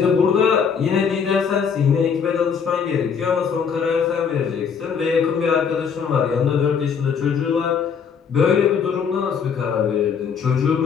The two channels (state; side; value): quieter; right; 6.6 dB